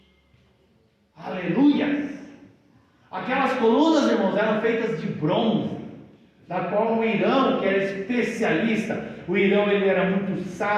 Aleluia! Aquelas colunas, irmãos, eram feitas de bronze, da qual o Irão, que era especialista, o Irão ele era muito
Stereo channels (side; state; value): both; identical; correlation 1.00